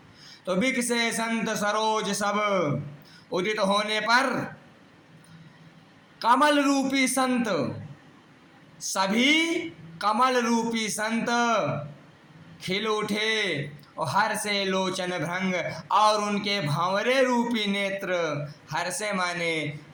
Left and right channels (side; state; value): both; identical; correlation 1.00